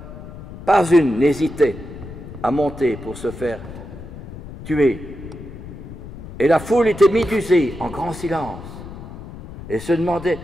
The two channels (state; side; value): noise; left; rumble, 13 dB below the sound